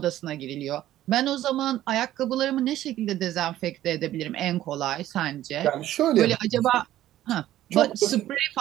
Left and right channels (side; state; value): left; quieter; 13.6 dB